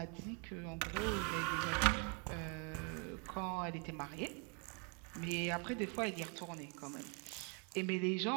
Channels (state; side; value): quieter; left; 36.1 dB